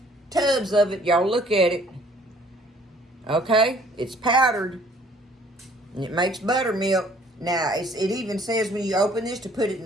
tubs of it. Y'all look at it. Okay? It's powdered. And it makes buttermilk. Now, it even says when you open this to put it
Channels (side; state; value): both; normal; correlation 0.58